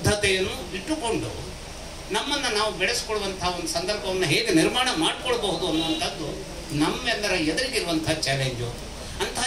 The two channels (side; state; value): both; identical; correlation 1.00